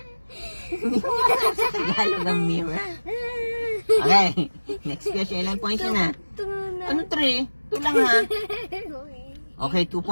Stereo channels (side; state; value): both; inverted; correlation -1.00